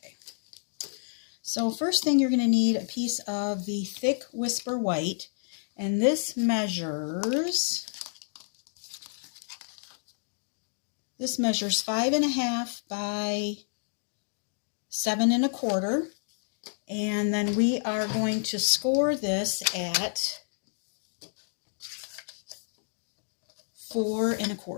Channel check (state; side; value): silent; right; digital silence